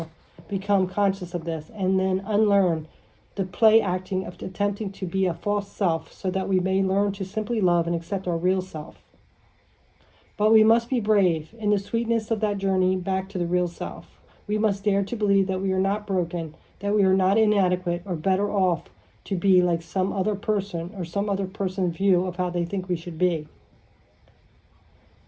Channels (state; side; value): identical; both; correlation 1.00